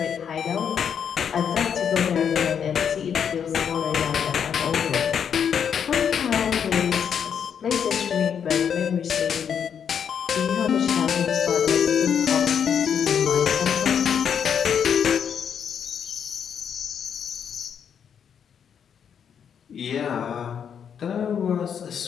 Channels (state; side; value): quieter; right; 7.8 dB